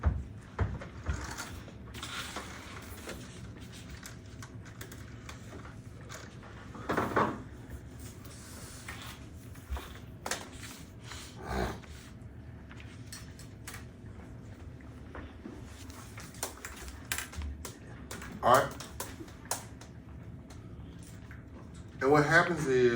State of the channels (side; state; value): both; identical; correlation 1.00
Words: All right. And what happens